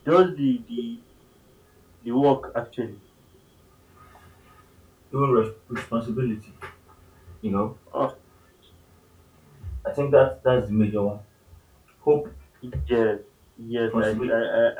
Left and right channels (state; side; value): identical; both; correlation 1.00